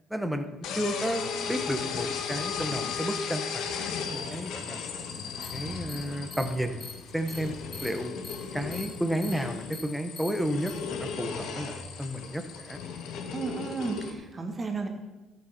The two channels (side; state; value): both; normal; correlation 0.78